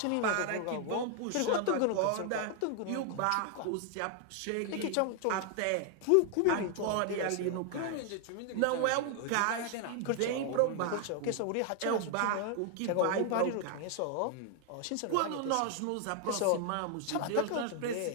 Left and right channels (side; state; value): both; different; correlation 0.00